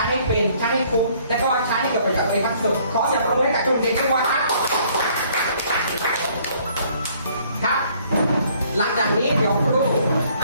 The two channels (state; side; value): inverted; both; correlation -0.61